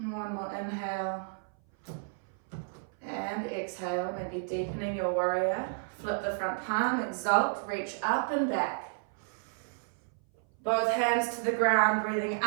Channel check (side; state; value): left; silent; 57 dB below the other